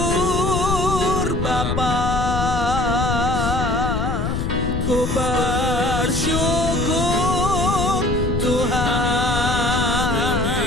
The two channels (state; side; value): noise; left; rumble, 2 dB below the sound